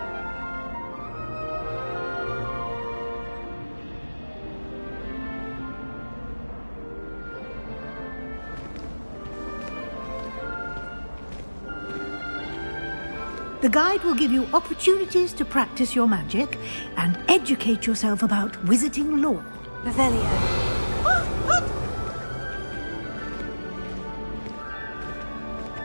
The guide will give you opportunities to practice your magic and educate yourself about wizarding lore. Revelio.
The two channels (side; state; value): both; inverted; correlation -1.00